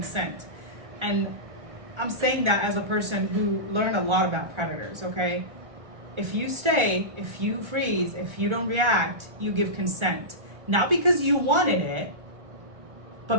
And I'm saying that as a person who learned a lot about predators, okay? If you stay, if you freeze, if you don't react, you give consent. Not because you wanted it, but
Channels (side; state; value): left; late; 1.4 ms